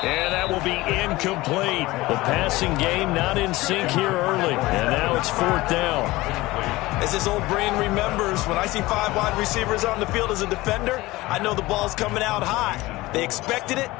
And that will be incomplete. The passing game not in sync here early. And now it's 4th down. As his old brain remembers, when I see 5 wide receivers on the field as a defender, I know the ball's coming out high. They expected it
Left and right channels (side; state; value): right; quieter; 19.6 dB